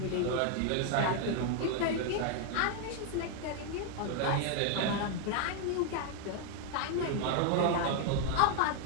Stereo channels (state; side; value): different; both; correlation 0.00